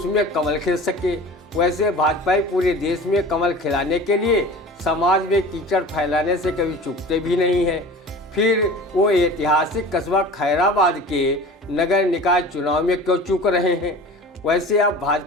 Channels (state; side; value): normal; both; correlation 0.39